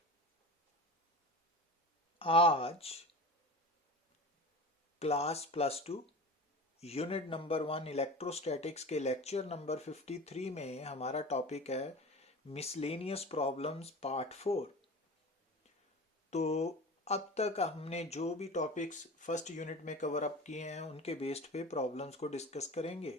आज class +2 unit number 1 electrostatics के lecture number 53 में हमारा टॉपिक है मिसलेनियस प्रॉब्लम्स पार्ट 4। तो अब तक हमने जो भी टॉपिक्स फर्स्ट यूनिट में कवर अप किए हैं उनके बेस्ड पे प्रॉब्लम्स को डिस्कस करेंगे।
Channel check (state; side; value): normal; both; correlation 0.34